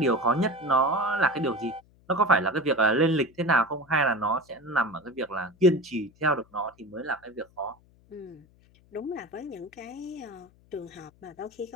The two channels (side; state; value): left; noise; hum, 30 dB below the sound